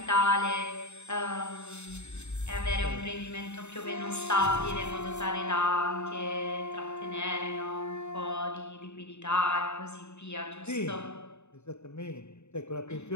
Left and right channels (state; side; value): late; right; 0.82 ms